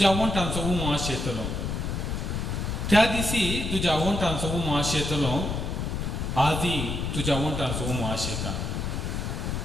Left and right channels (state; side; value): noise; left; rumble, 2 dB below the sound